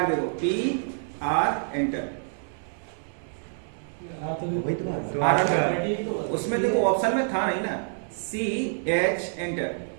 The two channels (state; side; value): silent; left; 60 dB below the other